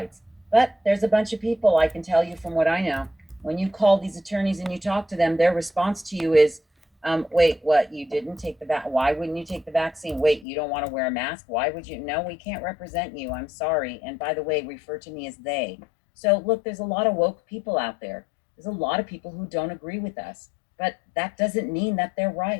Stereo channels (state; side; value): drops out; right; at 10.5 s